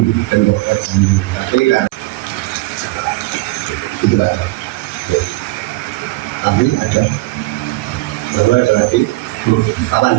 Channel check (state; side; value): quieter; left; 20.9 dB